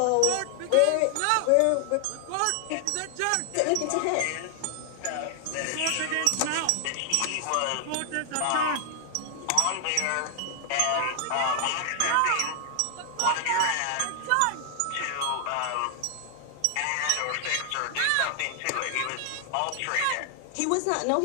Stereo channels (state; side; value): different; both; correlation 0.00